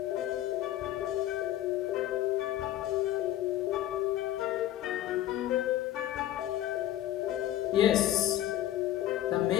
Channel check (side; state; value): right; quieter; 13.0 dB